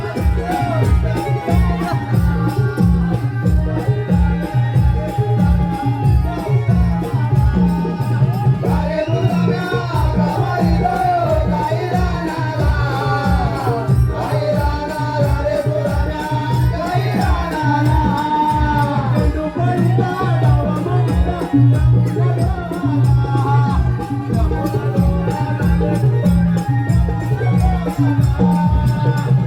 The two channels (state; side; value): identical; both; correlation 1.00